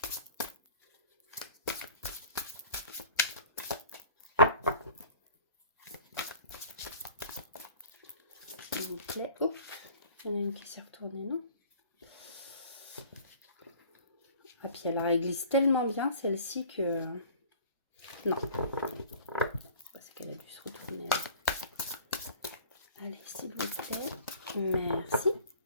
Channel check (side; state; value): both; inverted; correlation -0.47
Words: S'il vous plaît. Oh, il y en a une qui s'est retournée, non? Ah, puis alors, elle glisse tellement bien, celle-ci, que... Non. C'est qu'elle a dû se retourner. Allez, s'il vous plaît. Merci.